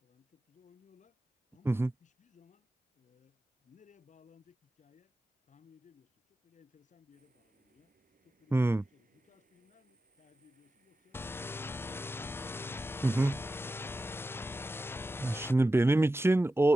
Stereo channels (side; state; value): both; normal; correlation 0.93